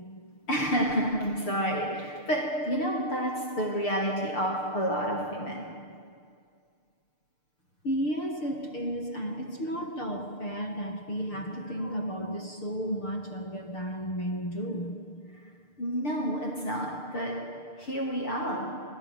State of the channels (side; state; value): right; late; 6.7 ms